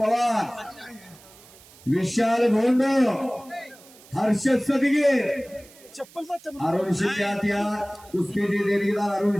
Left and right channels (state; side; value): noise; right; hiss, 24 dB below the sound